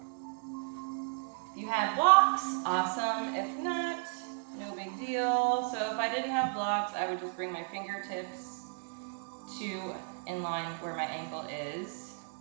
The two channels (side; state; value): left; silent; 55 dB below the other